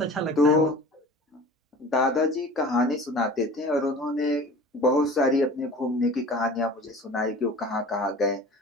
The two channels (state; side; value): normal; both; correlation 0.41